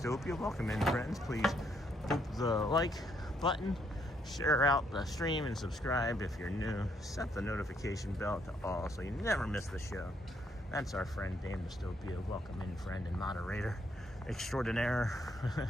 Welcome in, friends. Please hit the like button, share out the stream, and subscribe if you're new. Set the notification bell to all so you never miss the show. That's our friend Dame Dystopia. Welcome in, friend and moderator extraordinaire.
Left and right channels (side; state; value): both; normal; correlation 0.72